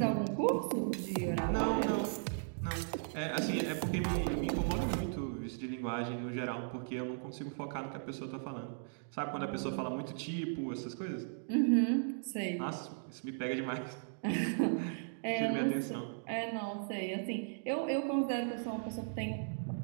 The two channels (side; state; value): left; silent; digital silence